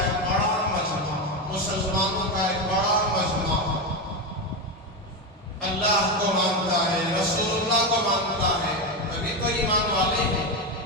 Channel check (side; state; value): both; normal; correlation 0.13